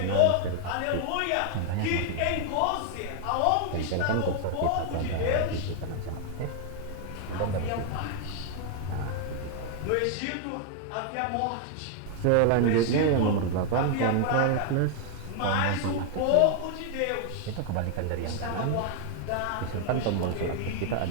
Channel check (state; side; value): different; both; correlation 0.00